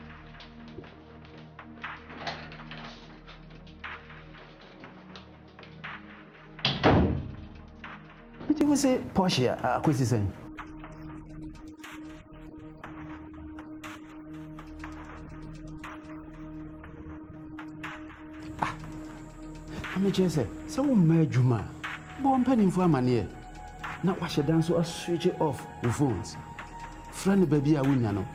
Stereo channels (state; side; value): identical; both; correlation 1.00